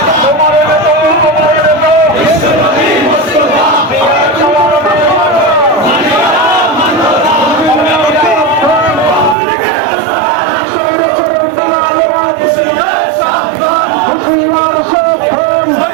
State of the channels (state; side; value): drops out; left; at 9.3 s